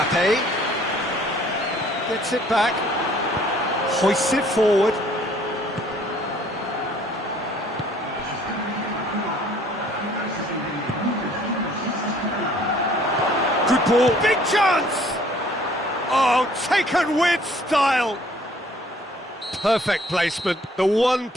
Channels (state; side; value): normal; both; correlation 0.58